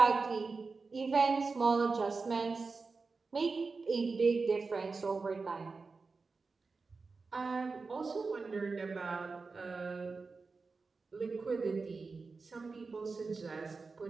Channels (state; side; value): quieter; left; 4.3 dB